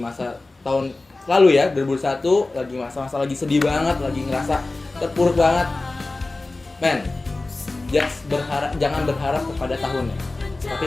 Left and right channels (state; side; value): quieter; right; 3.2 dB